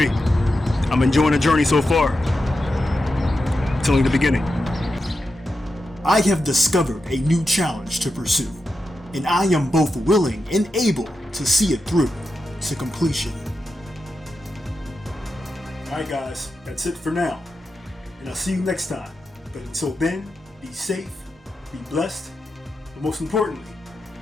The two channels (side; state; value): both; normal; correlation 0.89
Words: I'm enjoying the journey so far. It's only the beginning. I have discovered a new challenge to pursue, and I am both willing and able to see it through to completion. Alright guys, that's it for now, and I'll see you next time. But until then, be safe, be blessed, but most importantly,